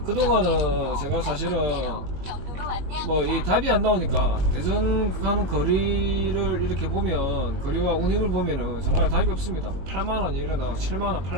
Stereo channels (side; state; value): left; late; 22 ms